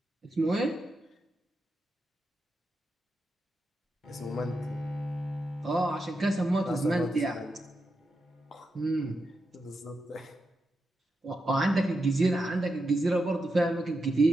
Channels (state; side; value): normal; both; correlation 0.87